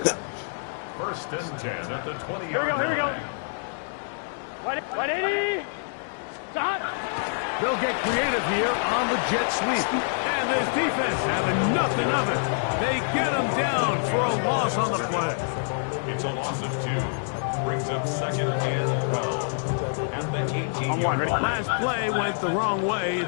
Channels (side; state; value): right; silent; digital silence